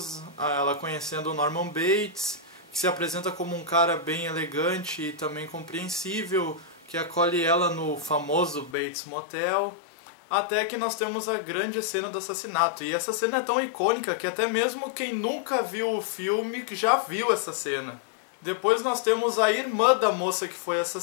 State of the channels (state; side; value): drops out; right; at 8.8 s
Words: ela conhecendo o Norman Bates, que se apresenta como um cara bem elegante e também compreensível, que acolhe ela no famoso Bates Motel, até que nós temos a grande cena do assassinato. E essa cena é tão icônica que até mesmo quem nunca viu o filme já viu essa cena. Depois nós temos a irmã da moça que foi